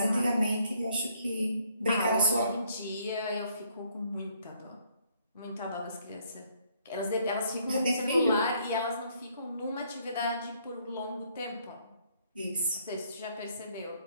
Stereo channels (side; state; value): both; inverted; correlation -0.67